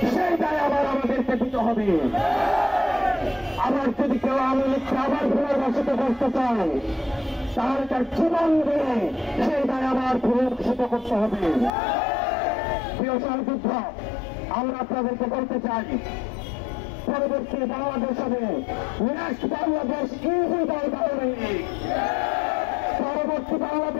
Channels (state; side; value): drops out; right; at 11.7 s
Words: সেই দায় আবার আমাদেরকে দিতে হবে। আবার যদি কেউ আওয়ামী লীগকে আবার পুনর্বাসিত করতে চান, তাহলে তার জীবন দিয়ে সেই দায় আবার পুনর্বাসিত করতে হবে। প্রিয় সহযোদ্ধা, আমরা আপনাদেরকে বলতে চাই, পরবর্তী বাংলাদেশ হবে নেক্সট বাংলাদেশ ইউজি দল আওয়ামী লীগ। পরবর্তী